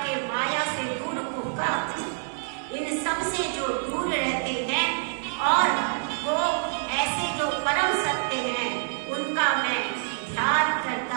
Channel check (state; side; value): silent; left; digital silence